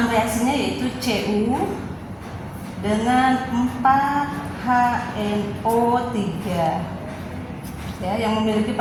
reaksinya yaitu Cu dengan 4HNO3. Ya, yang memiliki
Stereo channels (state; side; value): identical; both; correlation 1.00